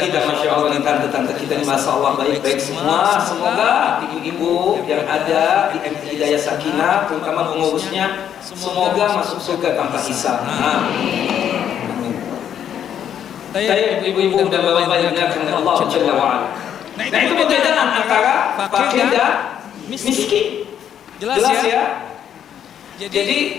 masya Allah, tante-tante kita ini, masya Allah, baik-baik semua. Semoga ibu-ibu yang ada di MT Hidayah Sakinah, terutama pengurusnya, semoga masuk surga tanpa hisab. Saya ibu-ibu dan bapak-bapak yang dimuliakan Allah Jalla wa'ala. Nah itu perbedaan antara fakir dan miskin. Jelas ya?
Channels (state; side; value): quieter; right; 9.4 dB